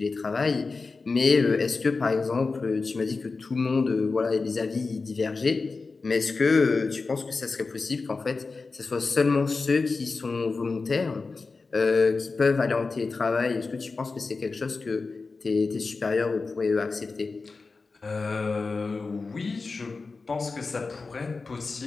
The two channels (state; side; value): quieter; right; 4.1 dB